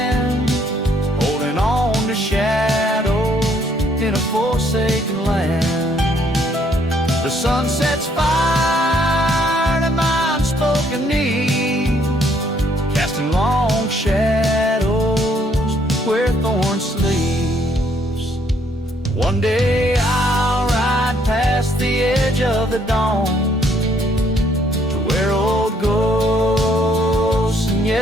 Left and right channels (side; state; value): both; normal; correlation 0.67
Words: holding on to shadows in a forsaken land. The sun sets fire to my unspoken need, casting long shadows where Thorn sleeps. One day I'll ride past the edge of the dawn to where old ghosts and